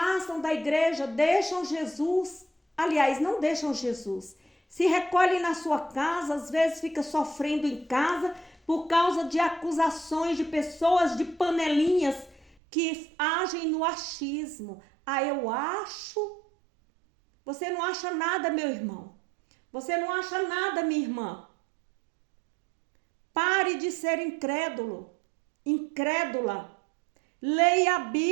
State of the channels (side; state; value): left; drops out; at 12.6 s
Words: da igreja, deixam Jesus. Aliás, não deixam Jesus. Se recolhem na sua casa, às vezes fica sofrendo em casa por causa de acusações de pessoas, de panelinhas que agem no achismo. Ah, eu acho. Você não acha nada, meu irmão. Você não acha nada, minha irmã. Pare de ser incrédulo, incrédula. Leia a